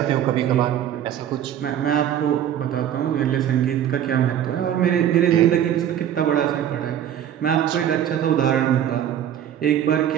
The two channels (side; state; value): left; quieter; 10.3 dB